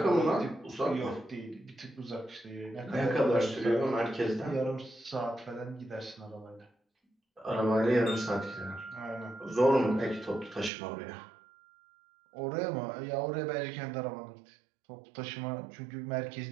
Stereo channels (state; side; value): drops out; left; at 10.7 s